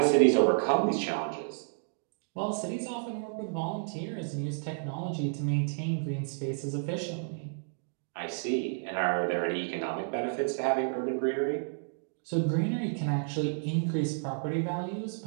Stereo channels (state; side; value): silent; left; digital silence